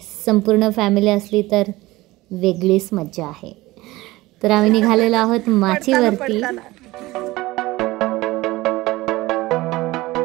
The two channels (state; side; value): quieter; left; 19.2 dB